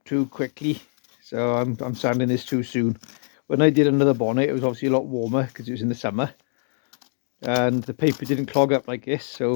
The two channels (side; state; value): right; silent; 63 dB below the other